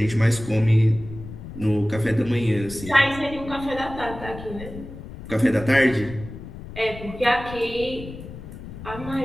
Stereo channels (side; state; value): left; noise; rumble, 13 dB below the sound